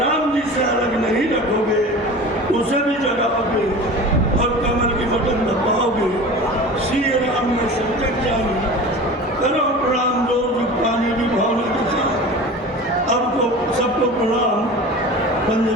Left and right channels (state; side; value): normal; both; correlation 0.35